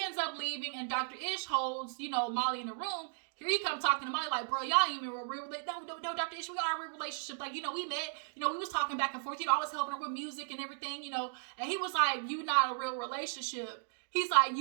ends up leaving, and Dr. Ish holds, Molly in the room. Here he come talking to Molly like, bro, y'all ain't even real. No, Dr. Ish, we are a real relationship. Like, we met, we was talking back and forth. I was helping her with music and everything, And he was like, you not a real relationship. He's like,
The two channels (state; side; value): silent; left; digital silence